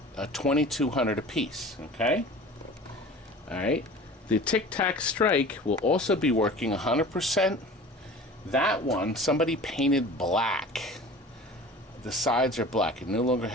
$2,200 a piece. Okay. All right. The Tic Tac Strike will also be working 100%. That one, somebody painted black. The sides are black. It no longer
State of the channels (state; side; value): normal; both; correlation 0.40